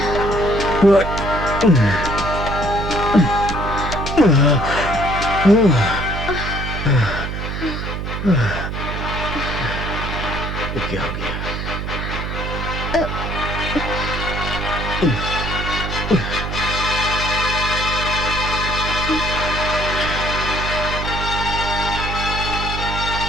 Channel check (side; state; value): right; noise; hum, 4 dB below the sound